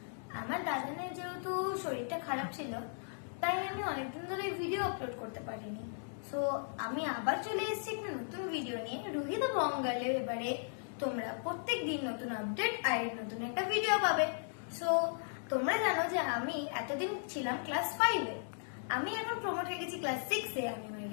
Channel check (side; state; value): right; silent; digital silence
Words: আমার দাদানের যেহেতু শরীরটা খারাপ ছিল, তাই আমি অনেকদিন ধরে ভিডিও আপলোড করতে পারিনি। সো আমি আবার চলে এসেছি একটা নতুন ভিডিও নিয়ে, রুহি দ্য বঙ্গালে। এবারে তোমরা প্রত্যেক দিন নতুন আপডেট আর নতুন একটা ভিডিও পাবে। সো তোমরা জানো যে আমি এতদিন ছিলাম ক্লাস 5-এ, আমি এখন প্রমোট হয়ে গেছি ক্লাস 6-এ। আমি আমার